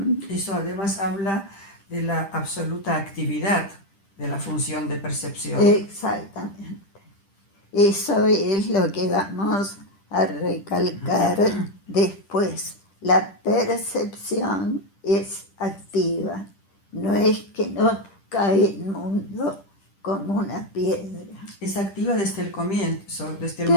Eso además habla de la absoluta actividad de la función de percepción. Exactamente. Eso es lo que vamos a recalcar después. La percepción es activa, no es que nos cae el mundo como una piedra. Es activa desde el comienzo, desde el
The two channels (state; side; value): late; right; 10 ms